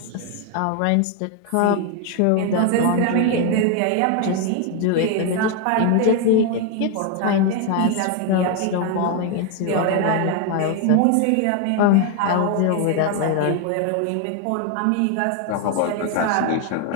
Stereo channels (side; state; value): both; different; correlation 0.01